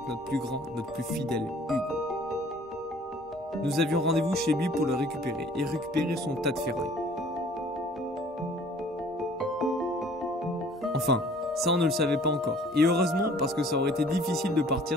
notre plus grand, notre plus fidèle Hugo. Nous avions rendez-vous chez lui pour le récupérer et récupérer son tas de ferraille. Enfin, ça on ne le savait pas encore. Et heureusement parce que ça aurait été difficile de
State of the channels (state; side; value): normal; both; correlation 0.52